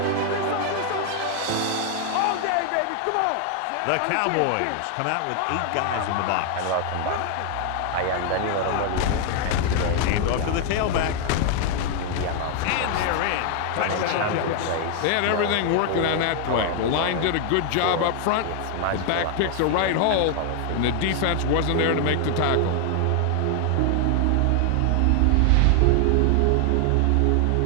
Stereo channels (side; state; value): both; different; correlation 0.00